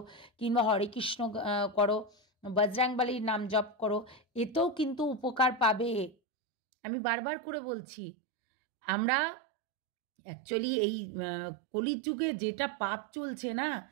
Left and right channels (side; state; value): left; drops out; at 6.2 s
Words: কিংবা হরে কৃষ্ণ করো, বজরংবলীর নাম জপ করো, এতেও কিন্তু উপকার পাবে। আমি বারবার করে বলছি, আমরা অ্যাকচুয়ালি এই কলির যুগে যেটা পাপ চলছে না,